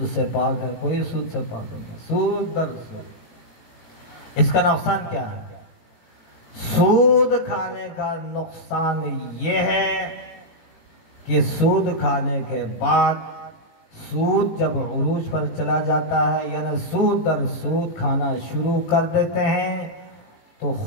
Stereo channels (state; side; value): late; right; 17 ms